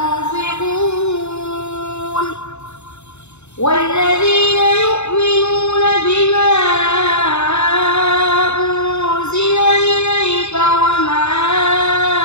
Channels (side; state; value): right; late; 0.81 ms